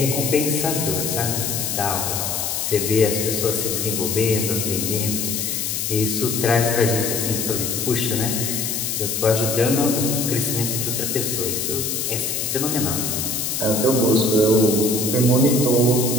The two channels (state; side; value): noise; left; hiss, 1 dB below the sound